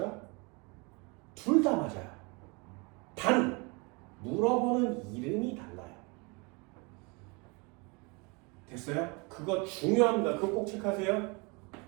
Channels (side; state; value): left; quieter; 29.5 dB